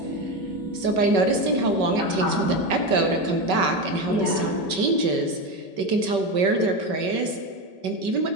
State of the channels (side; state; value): left; late; 5.3 ms